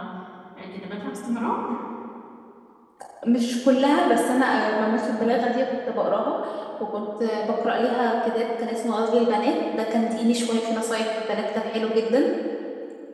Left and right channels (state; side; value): identical; both; correlation 1.00